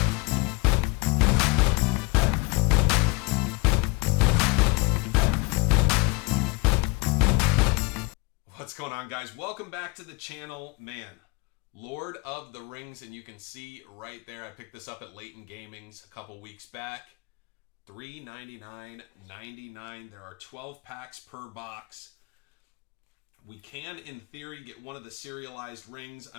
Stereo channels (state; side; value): quieter; right; 27.0 dB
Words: What's going on, guys? Welcome back to the channel. Man, Lord of the Rings, and you can see right there, I picked this up at Leighton Gaming's a couple weeks back. $3.99.99. There are 12 packs per box. We can, in theory, get one of the serialized rings. I